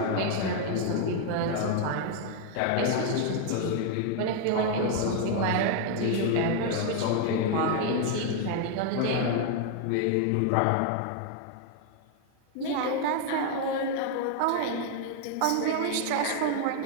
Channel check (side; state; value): both; different; correlation 0.00